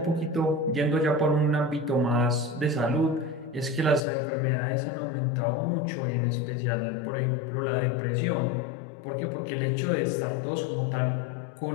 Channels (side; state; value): right; drops out; at 4.0 s